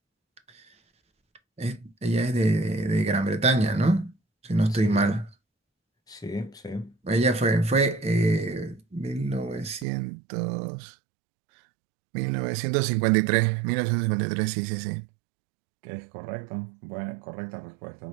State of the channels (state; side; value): drops out; left; at 9.9 s